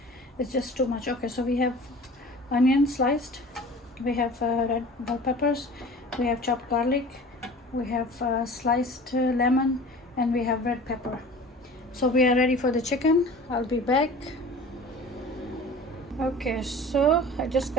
it's just too much. Okay, so we have onion sliced, we have red bell peppers, we have chopped garlic, we have sliced lemon, and we have red pepper. So we are ready for the chicken. I'll be back. Okay, so I just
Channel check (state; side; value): normal; both; correlation 0.41